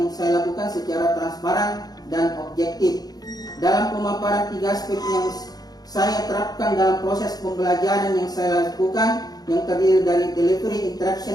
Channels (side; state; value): right; late; 0.19 ms